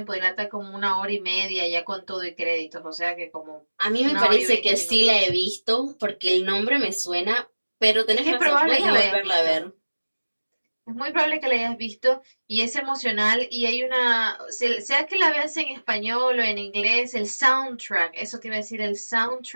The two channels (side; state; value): both; inverted; correlation -1.00